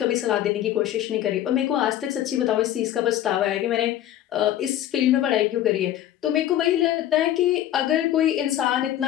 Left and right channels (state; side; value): quieter; right; 12.2 dB